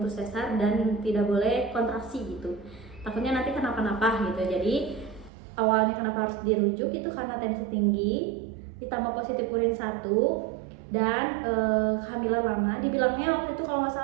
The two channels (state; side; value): drops out; left; at 5.3 s